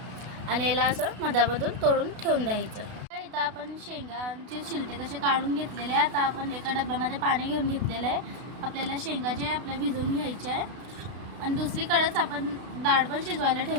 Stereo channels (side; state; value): left; late; 32 ms